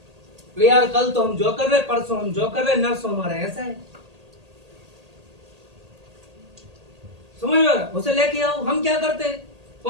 तो यार कल तो हम जो कर रहे, परसों हम जो कर रहे, नर्सों हमारा ऐसा है, समझ में? उसे लेके आओ। हम क्या करते,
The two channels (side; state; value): left; late; 1.8 ms